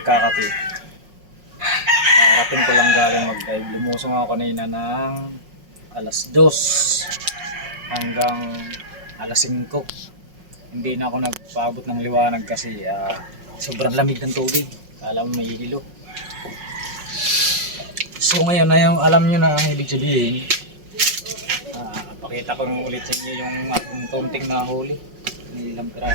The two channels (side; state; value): left; late; 5.5 ms